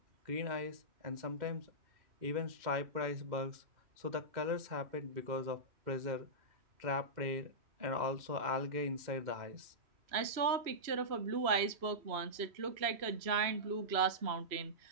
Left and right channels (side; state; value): left; late; 3.0 ms